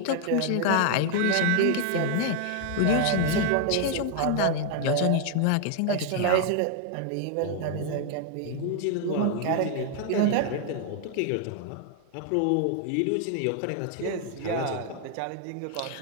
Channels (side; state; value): both; different; correlation 0.00